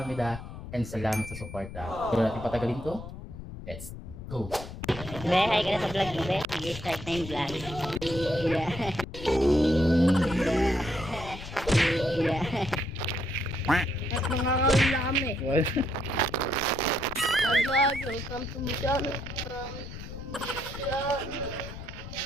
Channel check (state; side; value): noise; left; rumble, 11 dB below the sound